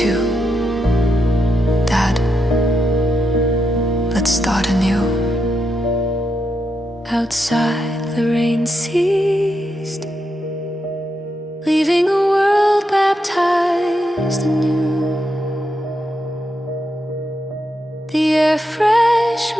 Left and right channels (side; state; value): both; normal; correlation 0.83